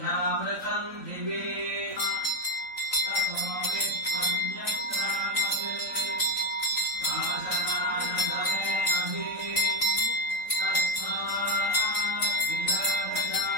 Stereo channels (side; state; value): right; late; 3.9 ms